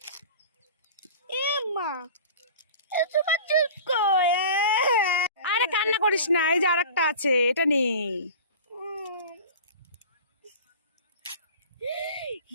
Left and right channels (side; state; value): both; inverted; correlation -0.38